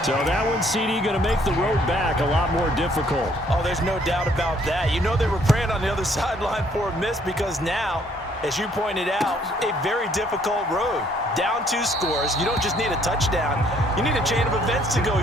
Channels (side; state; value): both; normal; correlation 0.64